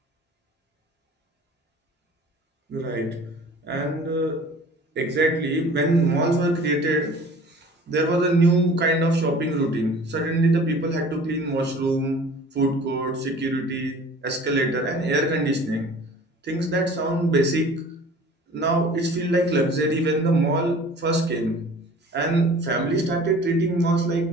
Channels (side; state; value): both; normal; correlation 0.46